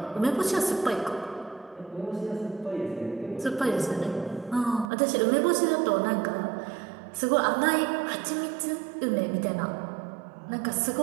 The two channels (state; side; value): drops out; left; at 4.9 s